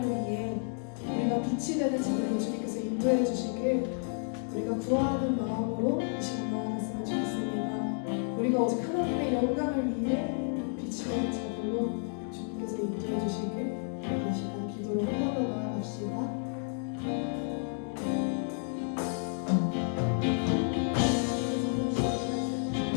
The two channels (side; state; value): right; silent; 56 dB below the other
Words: 위해 우리가 빛이 되는 자들로 주님께서 인도해 주시길 우리가 구하는 마음으로 이 시간 나아갔으면 좋겠습니다. 우리가 오직 하나님의 영광을 위해 빛이 되는 자들로 주님께서 인도해 주시길 이 시간 기도로 한 번 더 나아갑시다.